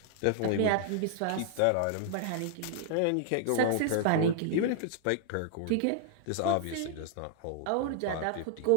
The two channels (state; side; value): different; both; correlation -0.01